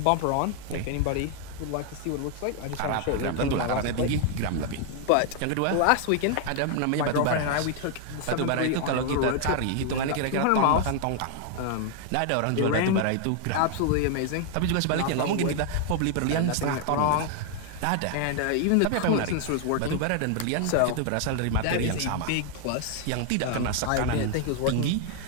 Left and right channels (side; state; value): both; different; correlation 0.00